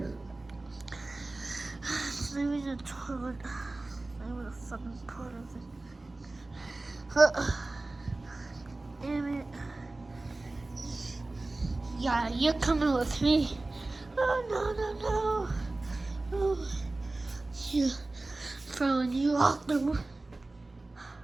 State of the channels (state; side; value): quieter; left; 3.0 dB